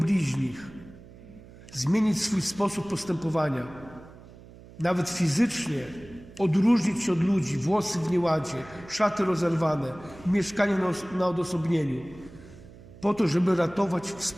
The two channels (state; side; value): noise; right; hum, 20 dB below the sound